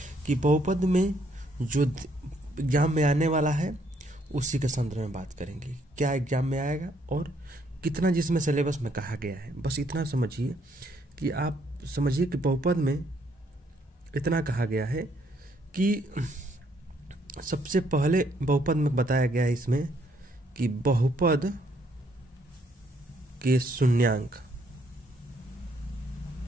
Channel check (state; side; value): normal; both; correlation 0.69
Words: कि बहुपद में जो एग्जाम में आने वाला है उसी के संदर्भ में बात करेंगे। क्या एग्जाम में आएगा और कितना जिसमें सिलेबस में कहा गया है, बस इतना समझिए कि आप समझिए कि बहुपद में इतना कहा गया है कि सबसे पहले बहुपद में बताया गया है इसमें कि बहुपद के शून्यांक।